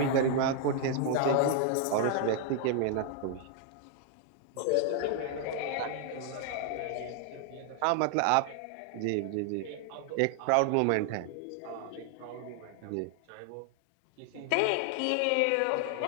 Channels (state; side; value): different; both; correlation 0.00